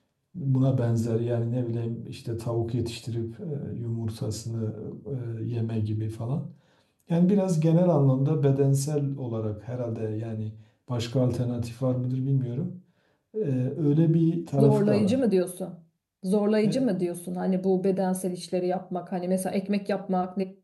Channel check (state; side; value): identical; both; correlation 1.00